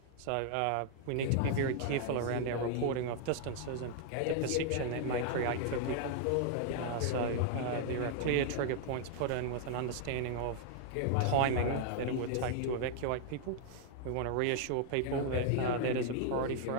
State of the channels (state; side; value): different; both; correlation 0.00